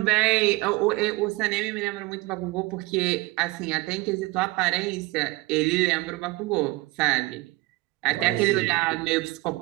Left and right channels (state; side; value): quieter; left; 21.7 dB